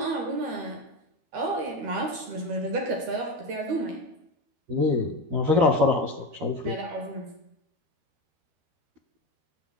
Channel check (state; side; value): late; left; 13 ms